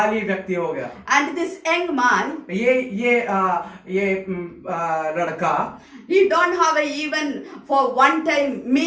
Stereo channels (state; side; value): identical; both; correlation 1.00